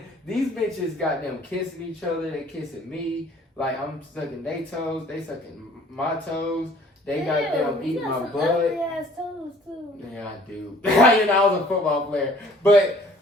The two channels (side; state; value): both; normal; correlation 0.55